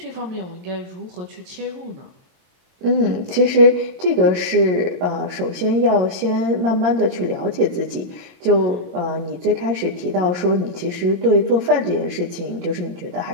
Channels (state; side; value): late; left; 22 ms